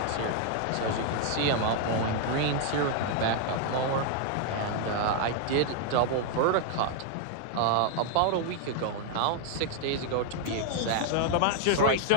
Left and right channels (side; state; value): both; different; correlation 0.00